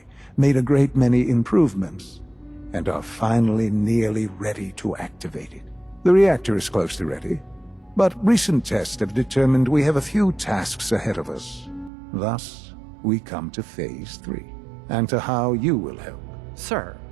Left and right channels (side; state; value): left; drops out; at 11.9 s